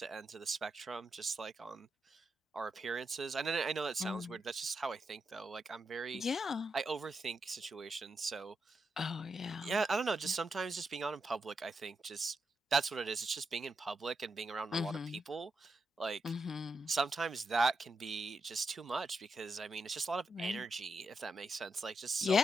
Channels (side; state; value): both; normal; correlation 0.84